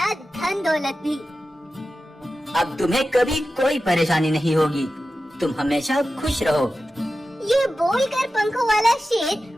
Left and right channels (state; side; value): normal; both; correlation 0.93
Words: धन दौलत भी। अब तुम्हें कभी कोई परेशानी नहीं होगी, तुम हमेशा खुश रहो। ये बोलकर पंखों वाला शेर